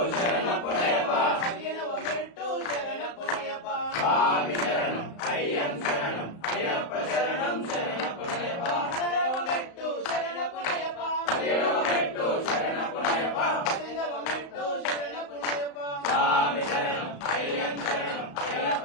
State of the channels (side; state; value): right; late; 35 ms